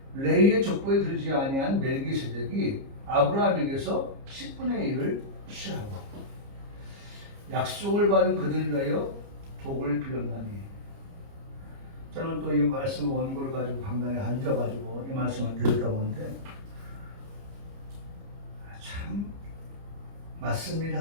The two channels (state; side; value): late; left; 30 ms